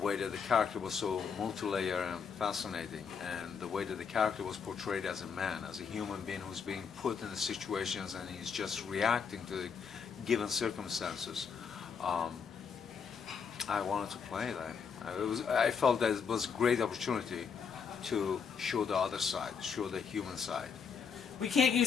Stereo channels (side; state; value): right; quieter; 6.3 dB